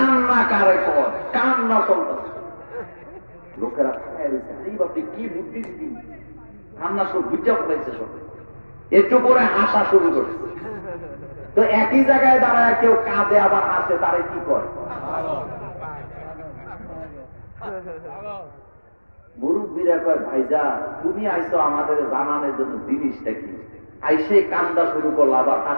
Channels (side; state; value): both; inverted; correlation -1.00